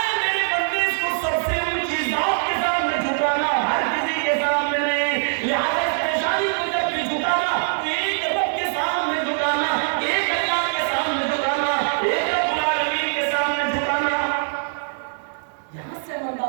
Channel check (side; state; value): left; silent; digital silence